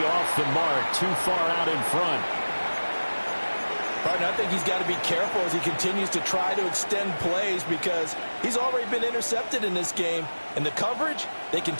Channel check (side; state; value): both; inverted; correlation -1.00